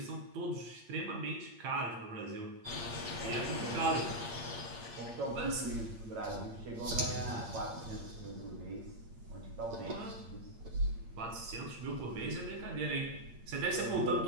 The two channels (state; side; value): late; left; 8.7 ms